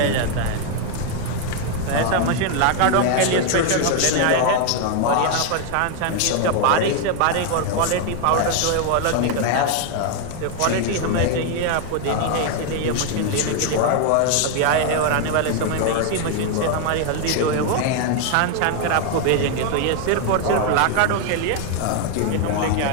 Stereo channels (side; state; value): both; different; correlation 0.00